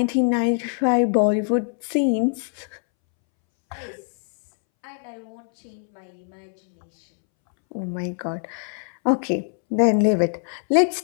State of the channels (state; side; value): silent; right; 63 dB below the other